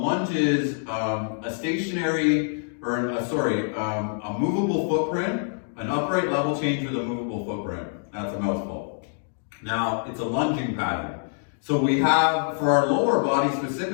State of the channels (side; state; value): right; silent; digital silence